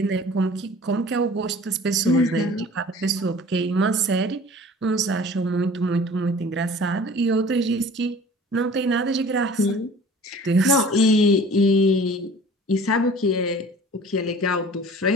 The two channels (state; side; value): normal; both; correlation 0.46